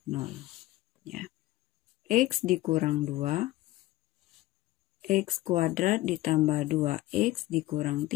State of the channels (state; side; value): quieter; right; 17.4 dB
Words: 0. Ya. X dikurang 2. X kuadrat ditambah 2X dikurang